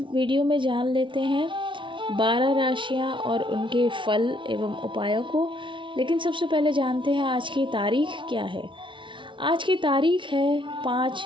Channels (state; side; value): late; left; 0.24 ms